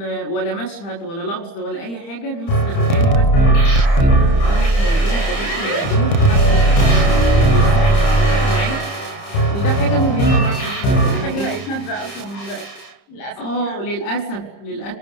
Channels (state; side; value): late; right; 30 ms